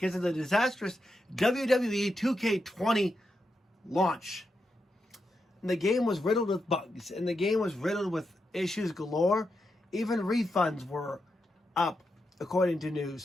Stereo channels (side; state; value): both; normal; correlation 0.86